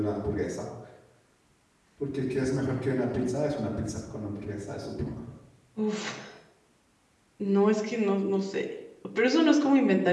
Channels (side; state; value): both; identical; correlation 1.00